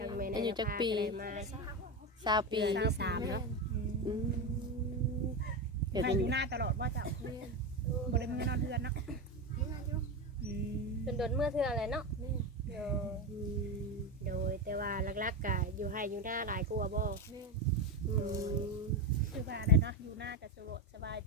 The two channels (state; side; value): normal; both; correlation 0.15